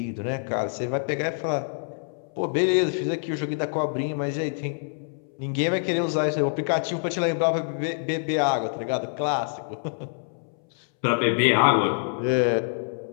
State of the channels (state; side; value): silent; right; 61 dB below the other